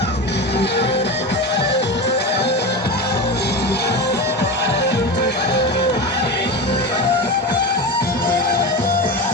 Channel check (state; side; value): normal; both; correlation 0.23